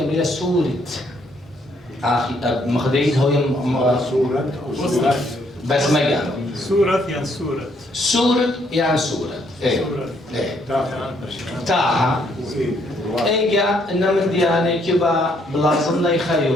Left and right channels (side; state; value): both; normal; correlation 0.70